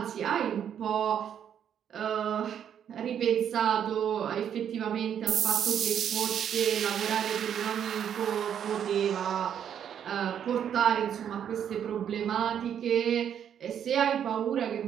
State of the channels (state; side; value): quieter; left; 8.9 dB